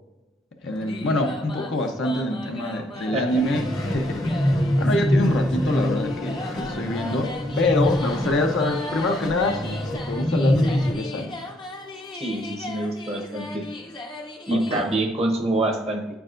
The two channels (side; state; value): both; normal; correlation 0.70